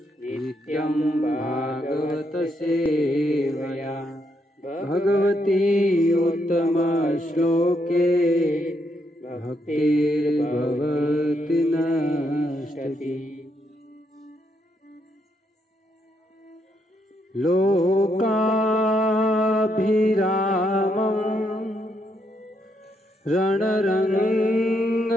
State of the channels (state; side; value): normal; both; correlation 0.77